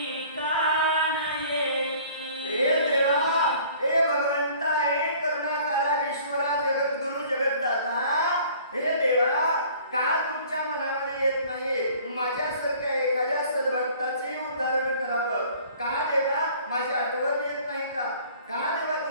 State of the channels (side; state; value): both; inverted; correlation -0.51